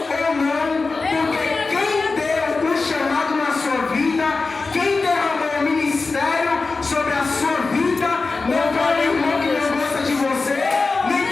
ou não, porque quem deu o chamado na sua vida, quem derramou o ministério sobre a sua vida, não foi o irmão que não gosta de você, nem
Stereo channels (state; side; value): quieter; right; 3.9 dB